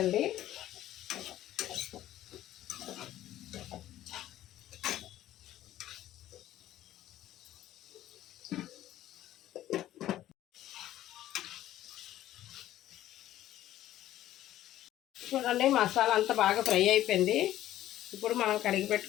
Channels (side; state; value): right; quieter; 13.5 dB